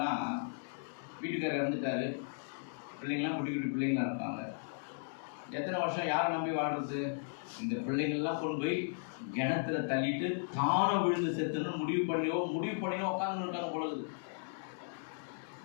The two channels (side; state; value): right; silent; digital silence